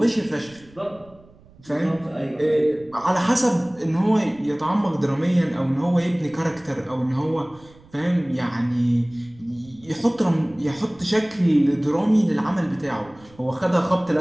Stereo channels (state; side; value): noise; right; rumble, 26 dB below the sound